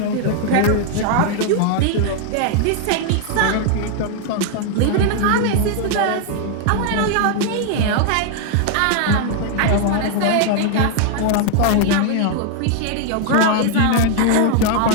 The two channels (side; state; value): both; different; correlation 0.00